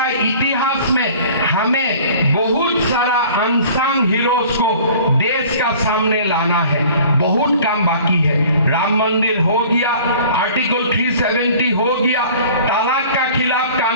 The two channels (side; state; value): both; inverted; correlation -0.47